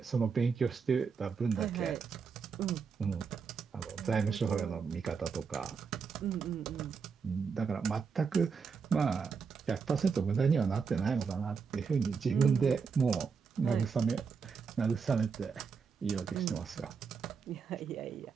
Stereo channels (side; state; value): left; quieter; 5.7 dB